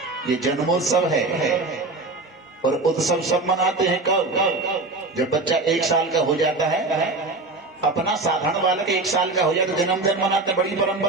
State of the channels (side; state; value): left; quieter; 3.3 dB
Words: ये जन्मोत्सव है, और उत्सव सब मनाते हैं कब? जब बच्चा 1 साल का हो जाता है। अपना साधारण बालक 1 साल का हो जाए तो जन्मदिन मनाते, बड़ी